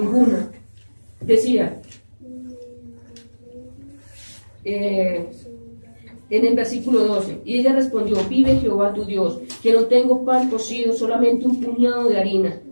Decía, en el versículo 12, y ella respondió, vive Jehová tu Dios, que no tengo pan cocido, solamente un puñado de harina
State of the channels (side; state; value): both; inverted; correlation -1.00